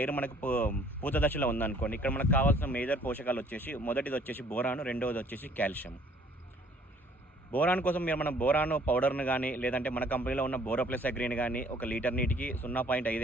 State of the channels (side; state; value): both; normal; correlation 0.58